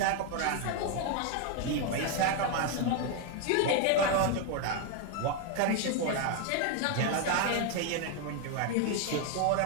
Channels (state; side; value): different; both; correlation 0.01